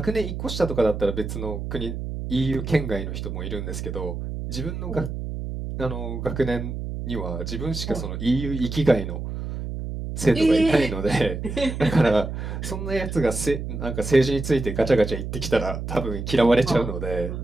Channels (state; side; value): noise; right; hum, 6 dB below the sound